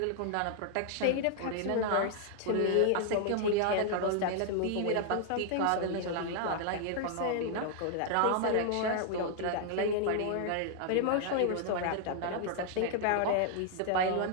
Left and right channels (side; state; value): both; different; correlation 0.00